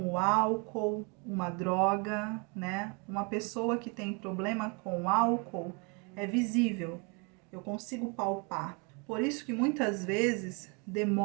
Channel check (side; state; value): left; quieter; 32.8 dB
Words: o álcool, uma droga, né? Uma pessoa que tem problema com álcool é visível, eu consigo palpar. Por isso que muitas vezes